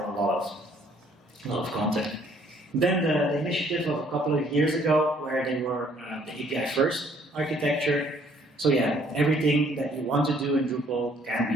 a lot of content. Then the initiative of a couple of years ago, where they were the API first architecture. So yeah, everything that you want to do in Drupal can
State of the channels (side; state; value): both; normal; correlation 0.62